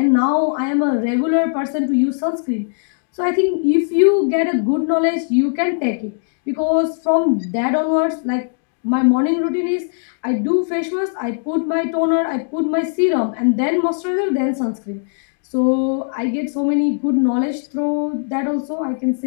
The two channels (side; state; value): right; silent; digital silence